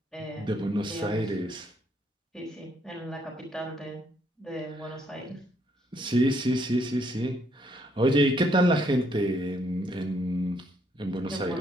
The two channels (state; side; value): normal; both; correlation 0.71